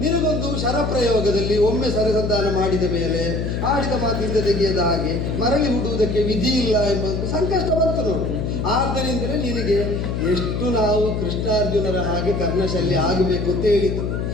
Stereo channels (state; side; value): noise; left; hum, 2 dB below the sound